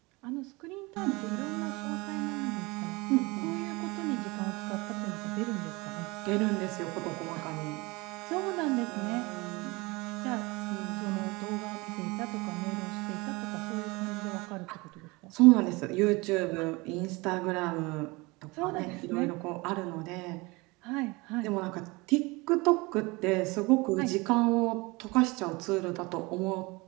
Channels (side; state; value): left; quieter; 24.5 dB